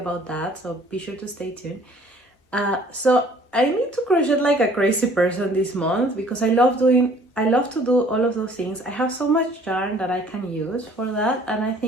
that, so be sure to stay tuned. So I need to crochet like a crazy person this month because I love to do all of those things. I have so much yarn that I can use for that, and I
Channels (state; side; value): normal; both; correlation 0.55